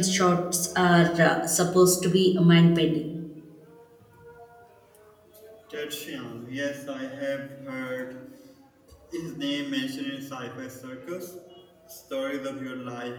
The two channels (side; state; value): both; identical; correlation 1.00